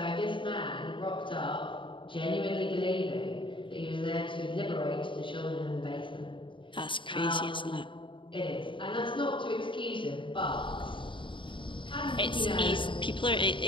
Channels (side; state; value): right; late; 0.24 ms